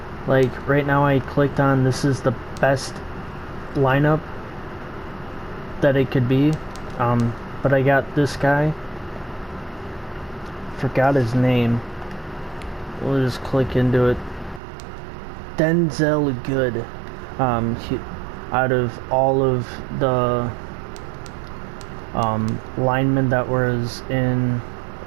Right now I clicked on this is the best lineup that it could be, but I got this guy, forgot his name, we'll just click into it. Denzel Good, out of all of the linemen that was in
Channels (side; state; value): left; drops out; at 14.6 s